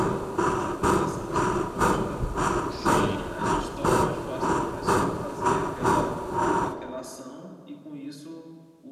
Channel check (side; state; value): both; identical; correlation 1.00